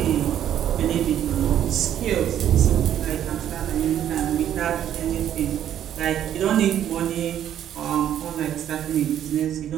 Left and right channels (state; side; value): quieter; left; 10.6 dB